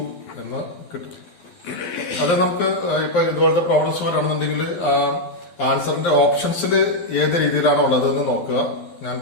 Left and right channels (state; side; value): late; right; 12 ms